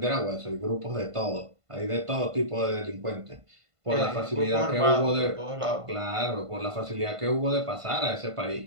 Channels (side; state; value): left; late; 1.5 ms